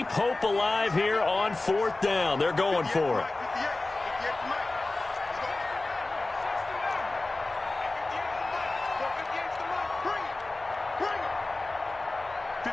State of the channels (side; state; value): right; quieter; 3.0 dB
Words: hope alive here on 4th down. They're going for it.